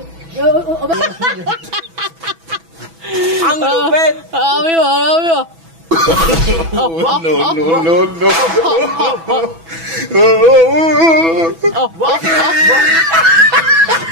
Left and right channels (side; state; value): left; late; 6.1 ms